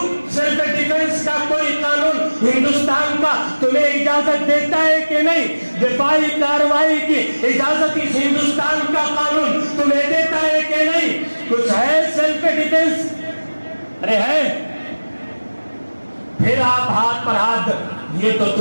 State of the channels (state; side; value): inverted; both; correlation -1.00